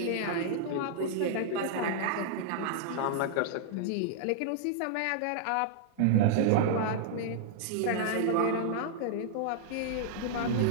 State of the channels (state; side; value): different; both; correlation -0.01